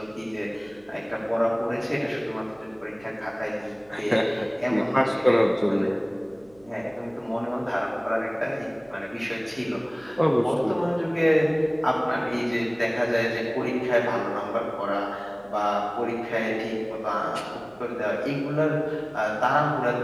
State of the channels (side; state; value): right; noise; hum, 29 dB below the sound